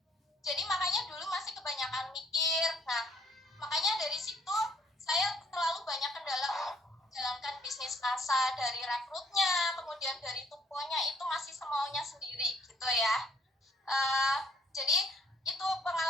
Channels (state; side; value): normal; both; correlation 0.65